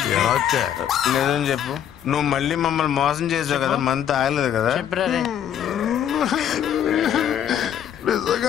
నిజం చెప్పు, నువ్వు మళ్ళీ మమ్మల్ని మోసం చేసావు కదా, మంత్ ఆగలేదు కదా? నిజంగా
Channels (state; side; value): quieter; right; 9.7 dB